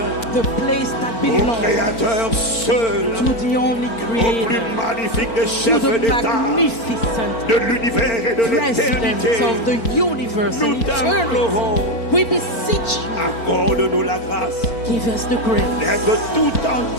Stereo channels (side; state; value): right; late; 3.9 ms